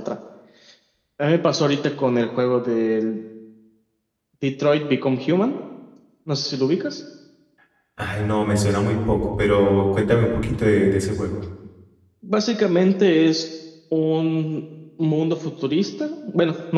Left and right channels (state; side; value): identical; both; correlation 1.00